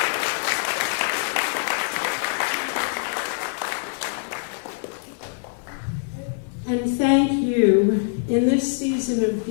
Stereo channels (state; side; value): silent; right; digital silence